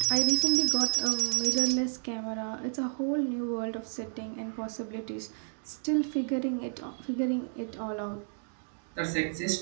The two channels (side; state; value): left; silent; digital silence